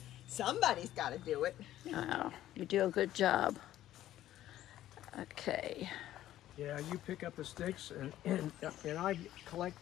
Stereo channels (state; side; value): quieter; right; 13.3 dB